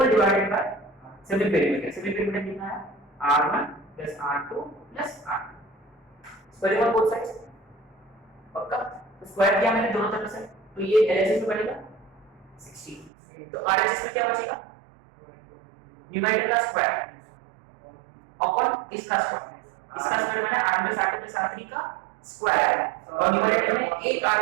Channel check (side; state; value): left; drops out; at 13.1 s